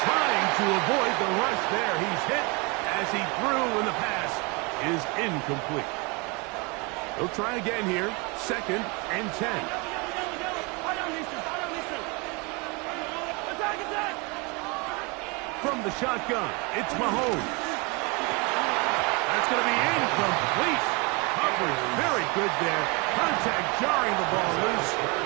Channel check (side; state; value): left; quieter; 28.3 dB